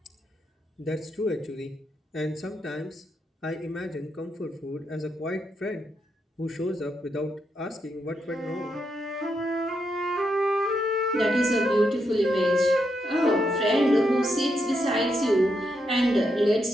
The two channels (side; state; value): both; normal; correlation 0.81